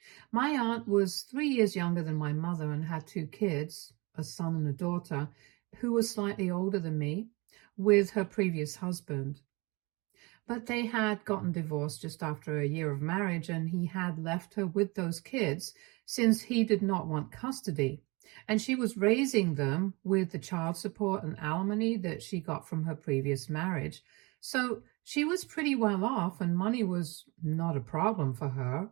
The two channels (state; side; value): quieter; left; 26.1 dB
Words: My aunt was 3 years younger than my mother and had two kids, a son and a daughter, who was slightly older than me, with her previous husband. But they had gotten divorced just after a year of marriage, and he had left her with those kids since he did not want custody. And she was raising them with the child support and alimony that she got from her previous marriage. So she was pretty well off, and money was not a problem for her,